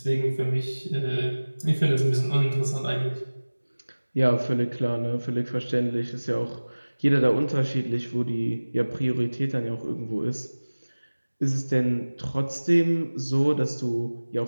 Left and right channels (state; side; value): inverted; both; correlation -1.00